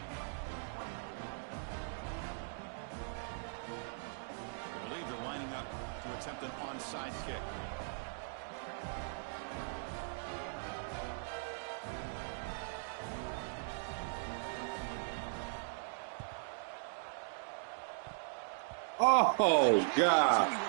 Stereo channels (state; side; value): silent; left; digital silence